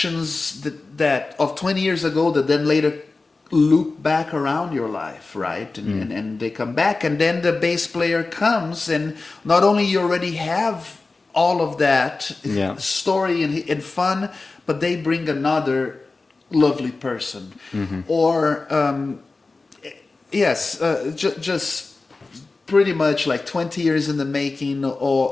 that of 20 years ago that then later loop back around your life, right? And they come back, and then the bass player comes, and not only you already have all of that story and fun, but they bring another lovely person. Or just pretty much like 20 years in the making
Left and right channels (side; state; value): right; quieter; 3.7 dB